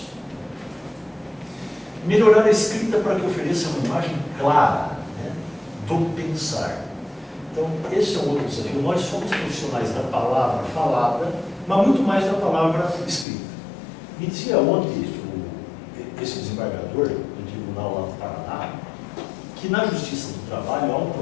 Melhorar a escrita para que ofereça uma imagem clara, né, do pensar. Então, esse é um outro desafio. Nós somos profissionais da palavra falada, mas muito mais da palavra escrita. Me dizia ontem esse desembargador do tribunal lá do Paraná, que na Justiça do Trabalho há um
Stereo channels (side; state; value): right; drops out; at 13.2 s